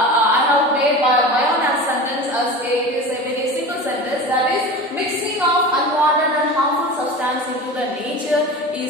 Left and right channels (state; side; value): normal; both; correlation 0.32